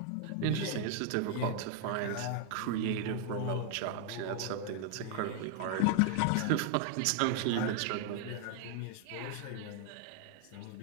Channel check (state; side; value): different; both; correlation 0.00